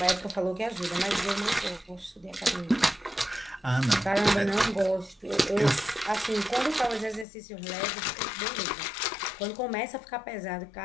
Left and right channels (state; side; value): drops out; right; at 7.2 s